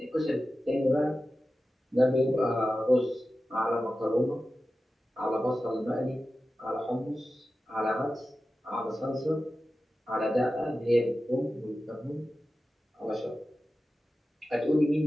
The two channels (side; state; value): both; normal; correlation 0.94